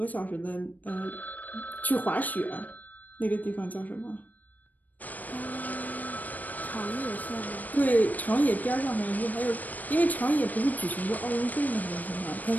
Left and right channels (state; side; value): late; right; 0.081 ms